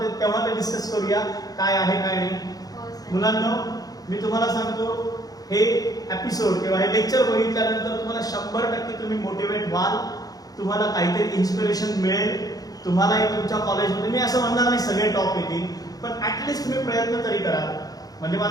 तेव्हा ते डिस्कस करूया काय आहे काय नाही. हो सर. मुलांना मी तुम्हाला सांगतो, हे एपिसोड किंवा हे लेक्चर बघितल्यानंतर तुम्हाला 100% तुम्ही मोटिवेट व्हाल, तुम्हाला काहीतरी इन्स्पिरेशन मिळेल. तुम्हालाही तुमच्या कॉलेजमध्ये, मी असं म्हणणार नाही सगळे टॉप येतील, पण ऍटलिस्ट तुम्ही प्रयत्न तरी करा. म्हणजे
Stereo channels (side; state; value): right; late; 0.18 ms